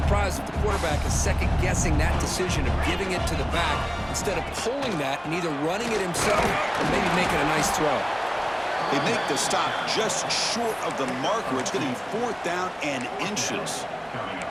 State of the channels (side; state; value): both; identical; correlation 1.00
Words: if the quarterback is second-guessing that decision of giving it to the back instead of pulling that and either running it himself or maybe making a nice throw. They make the stop just short of the marker. It's going to be 4th down and inches.